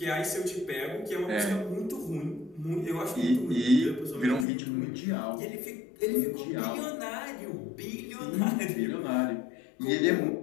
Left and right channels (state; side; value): drops out; right; at 4.5 s